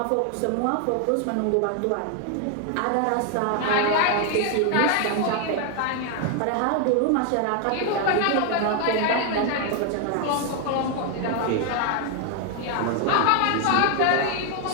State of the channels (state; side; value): different; both; correlation 0.01